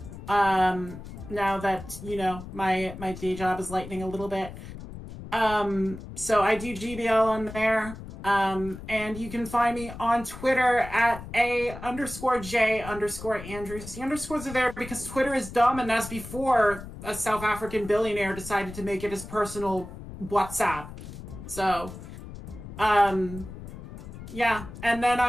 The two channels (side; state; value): left; noise; rumble, 12 dB below the sound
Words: now that, you know, my day job is lightening a little bit. So I do GBL on there. And you can find me on Twitter at _J_Andrews. The underscores are there because Twitter is dumb, and that's before a South African billionaire decided to make it his personal WhatsApp. So, yeah. And then